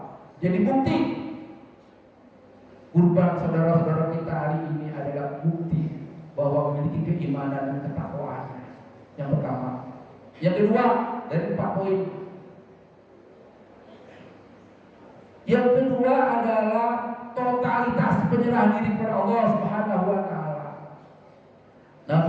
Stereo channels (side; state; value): both; identical; correlation 1.00